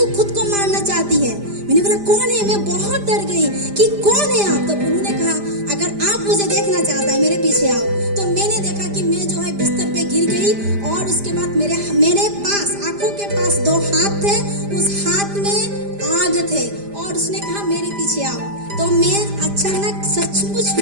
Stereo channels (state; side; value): late; left; 5.0 ms